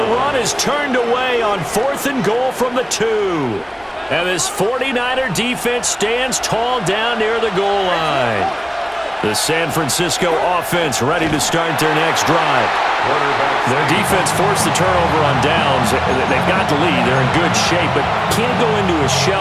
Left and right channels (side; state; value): both; identical; correlation 1.00